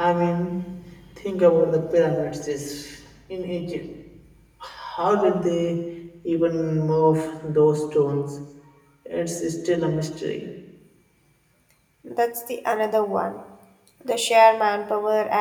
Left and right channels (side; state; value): both; identical; correlation 1.00